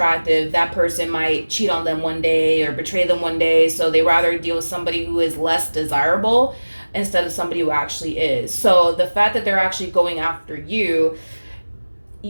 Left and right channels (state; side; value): inverted; both; correlation -1.00